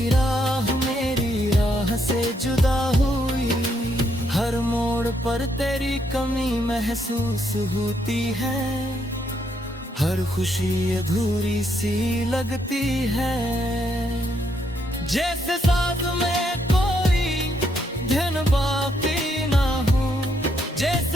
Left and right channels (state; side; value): normal; both; correlation 0.75